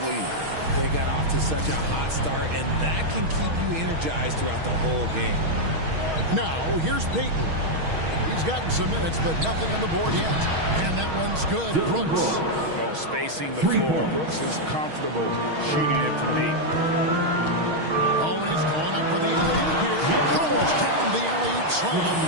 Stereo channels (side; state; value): left; late; 6.3 ms